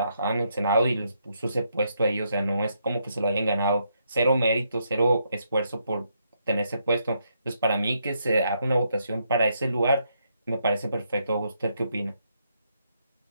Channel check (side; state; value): both; inverted; correlation -0.77